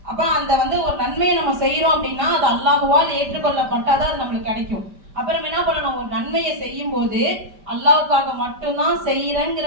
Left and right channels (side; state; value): left; late; 5.1 ms